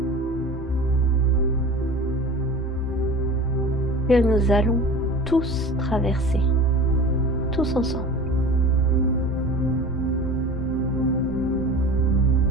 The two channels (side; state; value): both; normal; correlation 0.37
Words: Que nous allons tous traverser, tous ensemble.